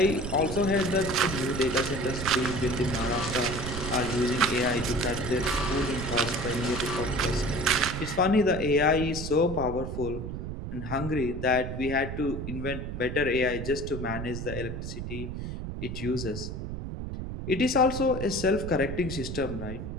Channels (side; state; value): right; noise; rumble, 6 dB below the sound